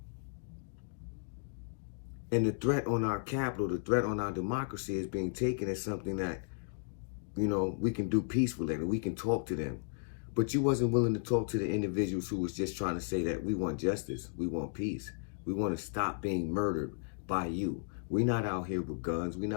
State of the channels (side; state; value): right; silent; digital silence